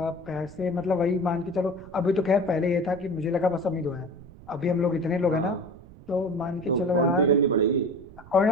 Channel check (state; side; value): noise; right; rumble, 20 dB below the sound